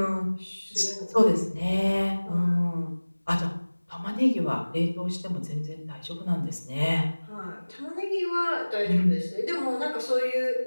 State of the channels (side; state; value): both; inverted; correlation -1.00